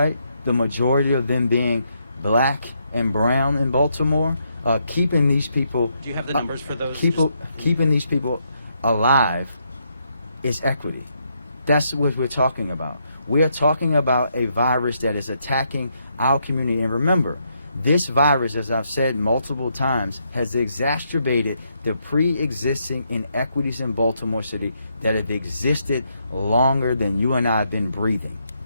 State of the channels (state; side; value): inverted; both; correlation -0.77